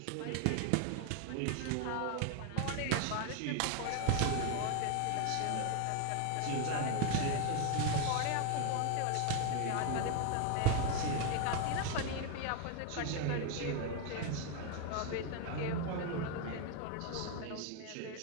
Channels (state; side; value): different; both; correlation 0.01